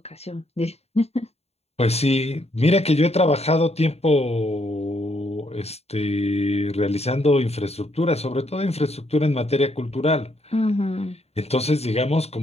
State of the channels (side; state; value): right; late; 0.30 ms